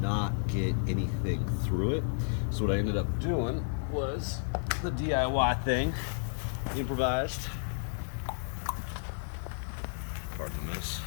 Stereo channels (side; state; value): right; silent; digital silence